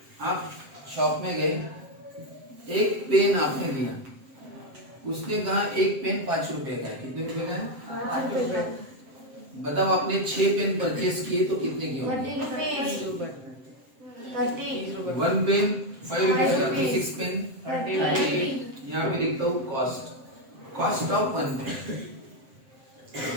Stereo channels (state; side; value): late; left; 7.6 ms